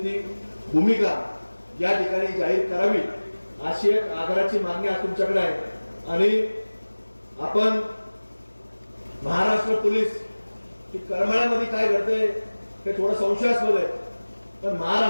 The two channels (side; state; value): both; inverted; correlation -1.00